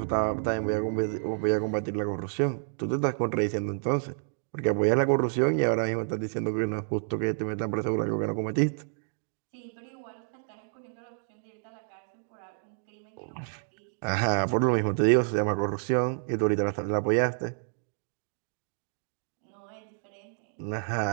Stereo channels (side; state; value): left; silent; digital silence